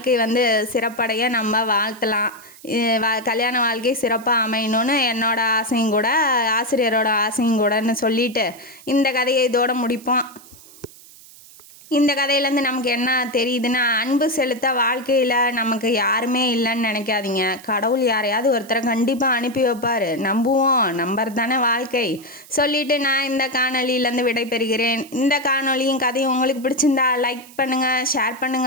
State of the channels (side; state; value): right; noise; hiss, 22 dB below the sound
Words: சிறப்படைய நம்ம வாழ்த்தலாம். கல்யாண வாழ்க்கை சிறப்பாக அமையணும்னு என்னோட ஆசையும் கூட, ஆசிரியரோட ஆசையும் கூடன்னு சொல்லிட்டு இந்த கதையை இதோடு முடிப்போம். இந்த கதையிலேருந்து நமக்கு என்ன தெரியுதுன்னா, அன்பு செலுத்த வாழ்க்கையில் நமக்கு யாருமே இல்லைன்னு நினைக்காதீங்க. கடவுள் யாரையாவது ஒருத்தரை கண்டிப்பாக அனுப்பி வைப்பார். நம்புவோம், நம்பர் தானே வாழ்க்கை சொல்லிவிட்டு நான் இந்த காணொலியிலேருந்து விடைபெறுகிறேன். இந்த காணொலியும் கதையும் உங்களுக்கு பிடிச்சிருந்தா லைக் பண்ணுங்கள், ஷேர்